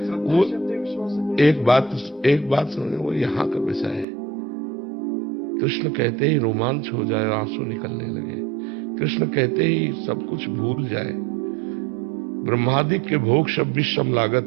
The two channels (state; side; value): drops out; left; at 4.0 s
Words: वो एक बात समझो, वो यहाँ का विषय है। कृष्ण कहते ही रोमांच हो जाए, आंसू निकलने लगे। कृष्ण कहते ही सब कुछ भूल जाए। ब्रह्मादि के भोग 26